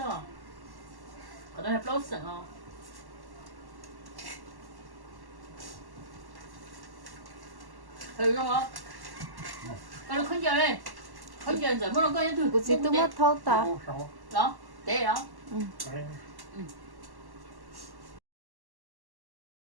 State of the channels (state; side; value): late; left; 1.1 ms